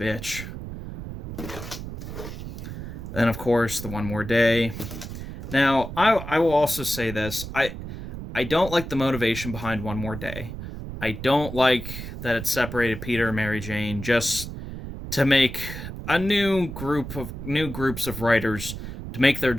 Then, of course, the One More Day. Now, I will also say this. I don't like the motivation behind One More Day. I don't like that it separated Peter and Mary Jane just to make a new groups of writers to make their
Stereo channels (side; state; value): right; noise; rumble, 9 dB below the sound